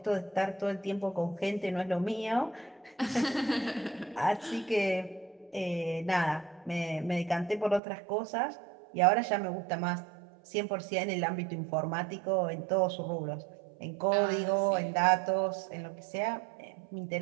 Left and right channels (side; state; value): left; drops out; at 7.8 s